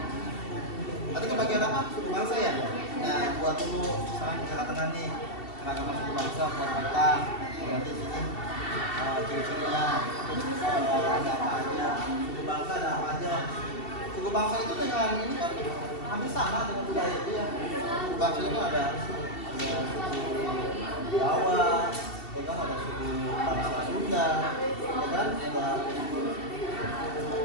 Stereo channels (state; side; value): late; right; 2.7 ms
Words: bangsa itu dengan ini kan hampir sama dengan budaya itu ya. Suku bangsa itu ada suku Jawa, ya kan, ada suku bangsa Sunda, ya kan, ada